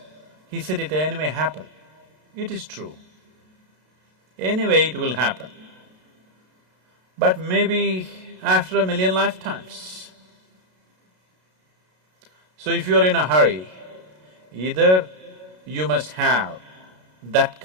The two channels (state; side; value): late; left; 32 ms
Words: He said it anyway happen. It is true. Anyway it will happen. But maybe after 1,000,000 lifetimes. So if you're in a hurry, either you must have that